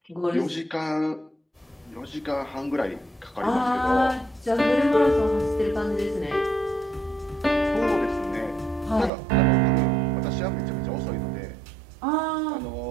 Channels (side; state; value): left; drops out; at 9.1 s